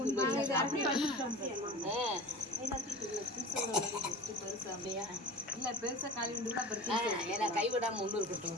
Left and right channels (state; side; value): normal; both; correlation 0.36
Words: இல்ல பெருசா காலி உண்டு கூட கைவிடாம ஒண்ணு இருக்கட்டும்.